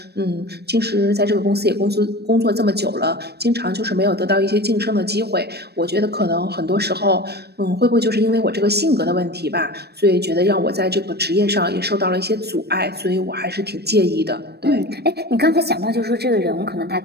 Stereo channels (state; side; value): late; left; 0.47 ms